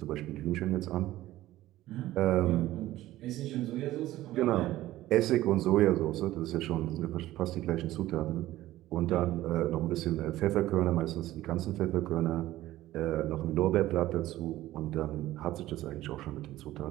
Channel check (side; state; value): left; quieter; 15.5 dB